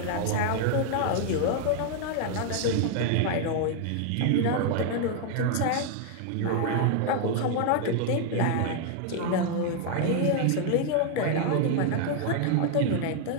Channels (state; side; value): different; both; correlation 0.00